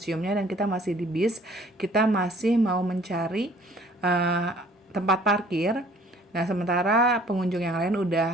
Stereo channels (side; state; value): both; normal; correlation 0.55